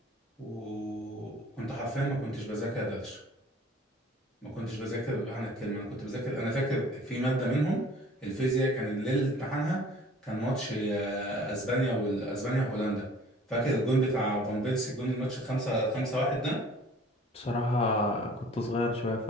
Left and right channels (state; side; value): normal; both; correlation 0.50